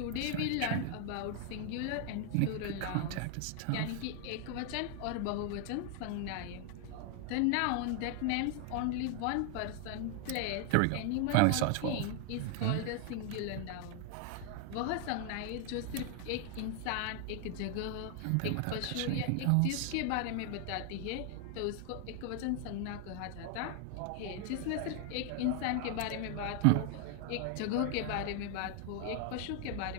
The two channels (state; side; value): different; both; correlation 0.00